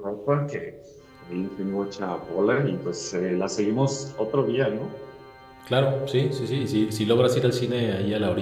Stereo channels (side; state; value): both; identical; correlation 1.00